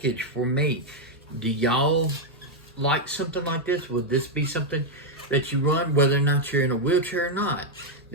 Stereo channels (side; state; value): both; normal; correlation 0.00